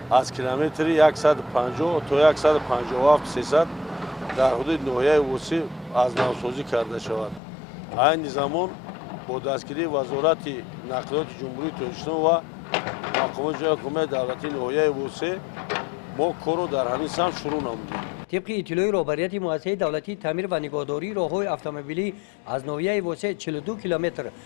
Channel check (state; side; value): drops out; right; at 7.4 s